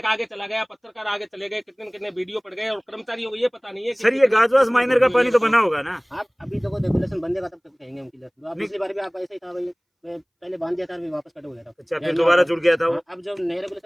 आगे चला गया, पत्रकार आगे चले गए, कितने कितने वीडियो पड़ गए और कर्मचारियों को ये पता नहीं है कि सर ये गाजवास माइनर का पानी तो बना होगा ना? आप अभी देखो रेगुलेशन बंदेगा तब तक कहेंगे हम क्लियर। आप पिछली बार भी आप ऐसे ही था भाई, मैं पहले बांध दिया था फिर वापस कट हो गया था। अच्छा फिर दोबारा जुड़ गया था वो? अब जब नया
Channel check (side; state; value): both; identical; correlation 1.00